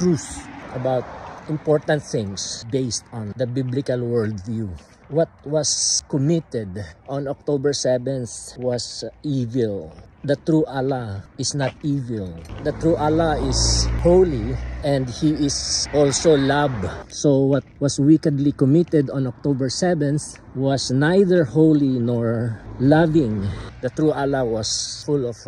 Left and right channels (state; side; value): identical; both; correlation 1.00